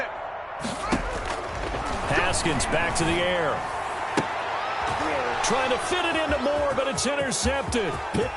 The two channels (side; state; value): both; identical; correlation 1.00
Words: Haskins back to the air. Trying to fit it into Moore, but it's intercepted.